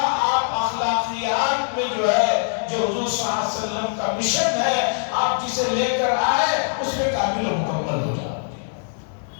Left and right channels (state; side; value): silent; right; digital silence